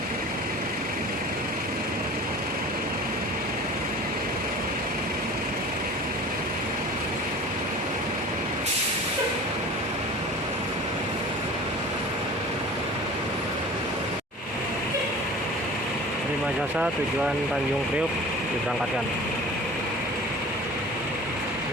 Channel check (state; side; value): normal; both; correlation 0.40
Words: Prima Jasa tujuan Tanjung Priok diberangkatkan.